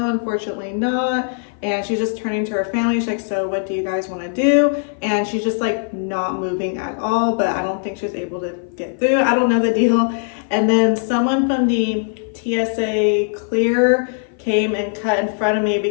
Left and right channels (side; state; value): right; silent; 56 dB below the other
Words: unfortunately not. And she's just turning to her family. She's like, so what do you guys want to do? And she's just like not moving at all, but I don't think she was able to get through. I don't know the deal. And then someone from the TSA clear came and cut in front of me